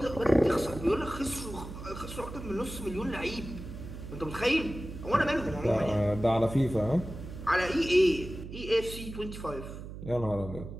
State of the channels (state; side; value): noise; right; hum, 11 dB below the sound